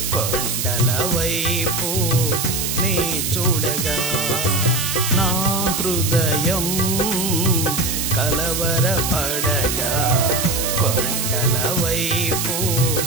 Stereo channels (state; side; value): noise; right; hiss, 1 dB below the sound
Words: కొండల వైపు నీ చూడగా నా హృదయం కలవరపడగా కొండల వైపు